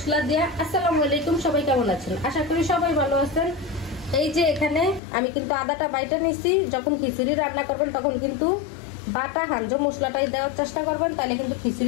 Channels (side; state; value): right; drops out; at 5.0 s